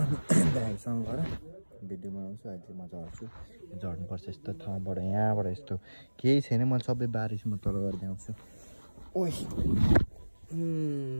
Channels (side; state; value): both; inverted; correlation -1.00